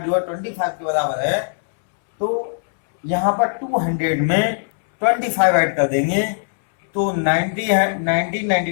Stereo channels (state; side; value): silent; right; 66 dB below the other